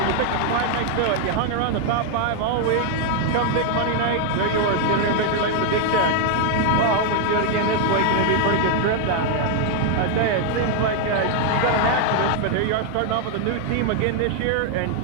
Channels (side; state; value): both; different; correlation 0.00